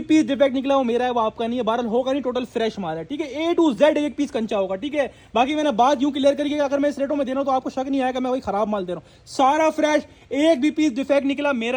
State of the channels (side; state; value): both; identical; correlation 1.00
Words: पीस डिफेक्ट निकला वो मेरा है, वो आपका नहीं है। बहरहाल होगा नहीं, टोटल फ्रेश माल है, ठीक है। A to Z एक पीस कंचा होगा, ठीक है। बाकी मैंने बात यूं क्लियर करी कि अगर मैं इस रेटों में दे रहा हूं तो आपको शक नहीं आएगा मैं वही खराब माल दे रहा हूं। सारा फ्रेश, एक भी पीस डिफेक्ट निकला